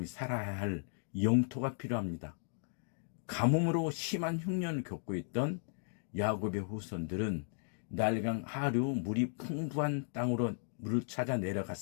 살아야 할 영토가 필요합니다. 가뭄으로 심한 흉년을 겪고 있던 야곱의 후손들은 날강 하류 물이 풍부한 땅으로 물을 찾아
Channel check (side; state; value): right; silent; 54 dB below the other